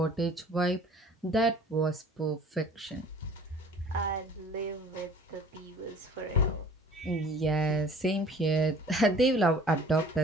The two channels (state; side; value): normal; both; correlation 0.48